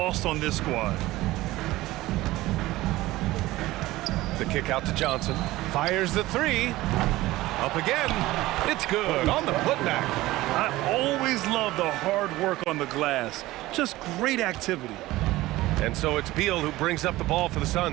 on this squad. The kick out to Johnson. Fires the 3. Up again. It's good on the putback. I always love the hard work on the glass. Just great activity. And so it's Beal who brings up the ball for the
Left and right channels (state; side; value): quieter; left; 17.8 dB